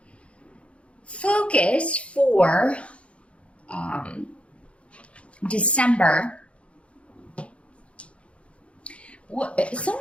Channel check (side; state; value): right; late; 0.061 ms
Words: Focus for December.